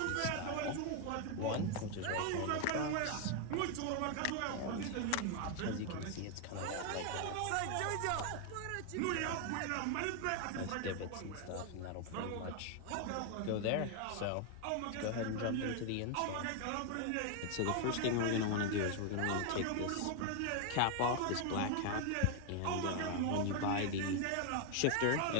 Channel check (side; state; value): both; different; correlation 0.01